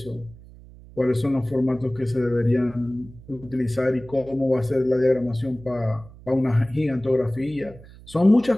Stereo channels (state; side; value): noise; right; hum, 20 dB below the sound